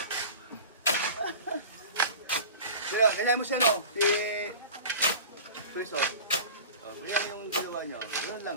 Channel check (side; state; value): both; inverted; correlation -0.36